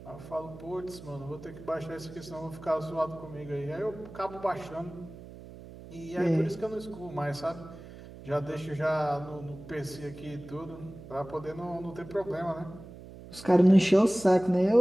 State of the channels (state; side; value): noise; right; hum, 16 dB below the sound